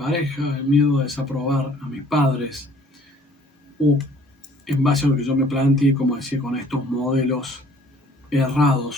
el miedo a desaprobar a mis padres, o en base a lo que yo me planteé, como decía, con estos modelos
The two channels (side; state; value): both; normal; correlation 0.56